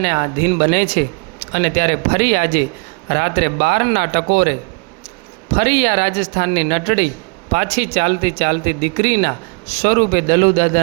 આધીન બને છે. અને ત્યારે ફરી આજે રાત્રે 12ના ટકોરે ફરી આ રાજસ્થાનની નટડી પાછી ચાલતી ચાલતી દીકરીના સ્વરૂપે દલુ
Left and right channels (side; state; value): left; quieter; 33.3 dB